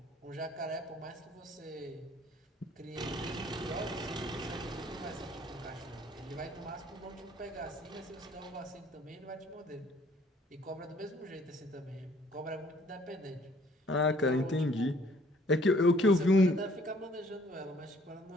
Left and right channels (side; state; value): both; normal; correlation 0.60